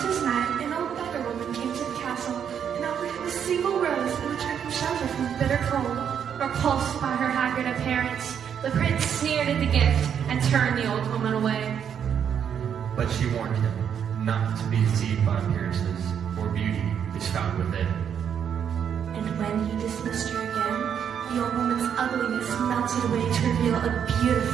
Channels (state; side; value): quieter; left; 8.2 dB